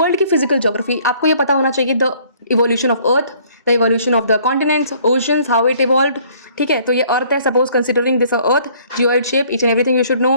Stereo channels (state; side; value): inverted; both; correlation -0.59